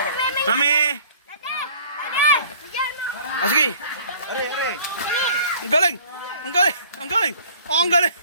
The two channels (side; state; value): both; inverted; correlation -0.51